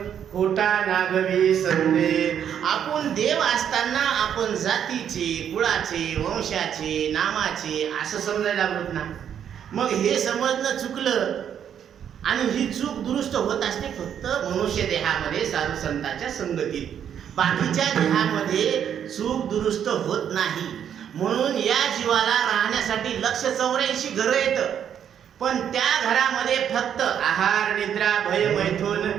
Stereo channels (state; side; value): quieter; left; 8.9 dB